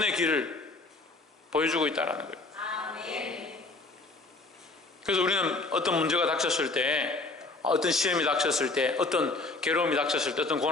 길을 보여주고 있다는 거예요. 그래서 우리는 어떤 문제가 닥쳤을 때 어떤 시험이 닥쳤을 때 어떤 괴로움이 닥쳤을 때 어떤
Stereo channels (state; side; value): quieter; right; 3.4 dB